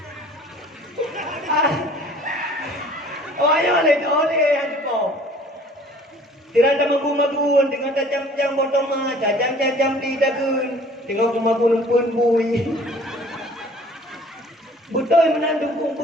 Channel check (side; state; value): both; normal; correlation 0.51